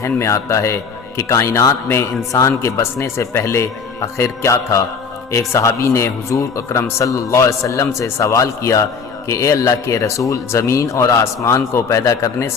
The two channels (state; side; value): quieter; right; 5.5 dB